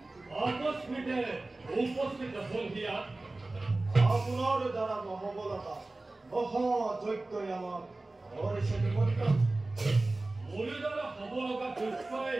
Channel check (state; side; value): quieter; left; 3.0 dB